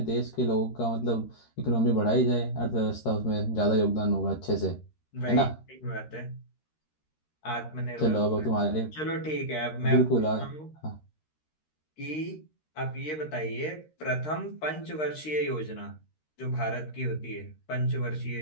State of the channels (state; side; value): late; right; 13 ms